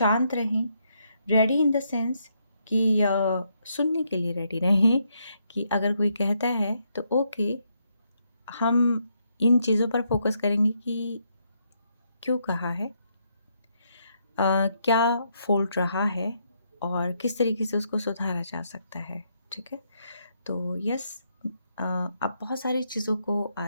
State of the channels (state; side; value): inverted; both; correlation -0.77